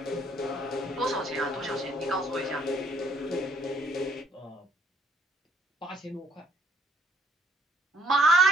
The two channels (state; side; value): normal; both; correlation 0.65